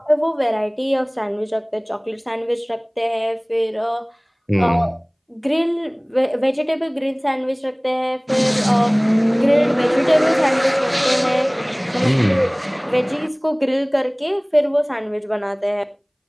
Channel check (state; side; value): identical; both; correlation 1.00